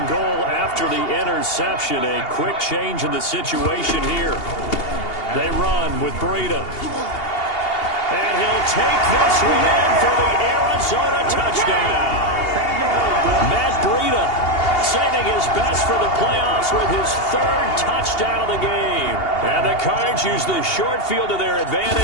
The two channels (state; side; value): late; right; 2.8 ms